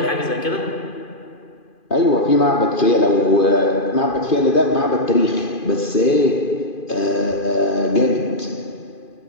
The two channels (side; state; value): right; late; 2.5 ms